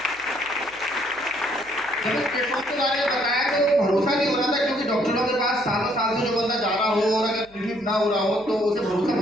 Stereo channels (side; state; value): right; noise; hum, 27 dB below the sound